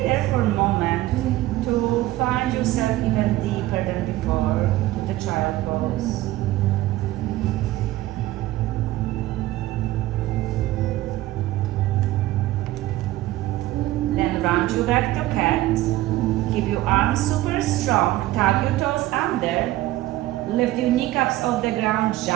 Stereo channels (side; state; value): left; quieter; 16.3 dB